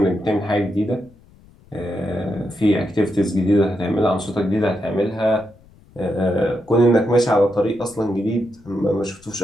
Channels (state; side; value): noise; left; rumble, 27 dB below the sound